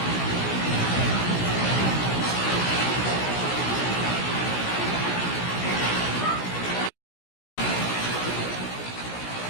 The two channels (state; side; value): late; right; 16 ms